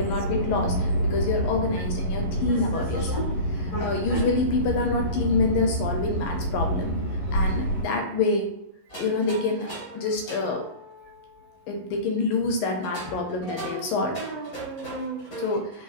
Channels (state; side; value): late; right; 11 ms